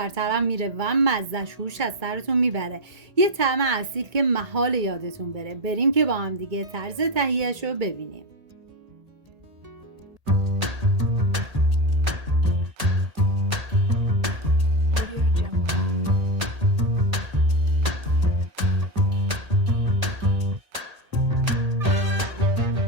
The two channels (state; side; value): late; left; 1.8 ms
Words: میره و مزهش هوش از سرتون میبره. یه طعم اصیل که محال یادتون بره. بریم که با هم دیگه طرز تهیه‌اش رو ببینیم.